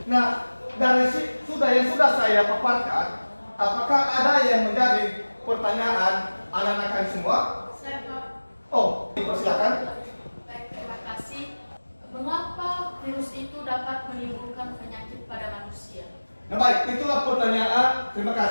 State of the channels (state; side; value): inverted; both; correlation -1.00